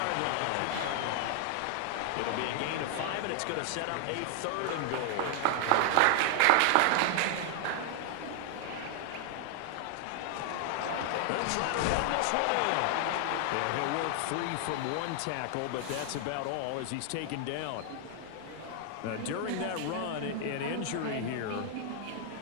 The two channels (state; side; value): different; both; correlation 0.00